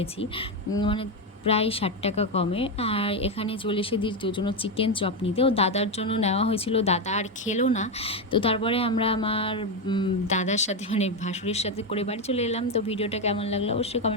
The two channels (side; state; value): both; normal; correlation 0.09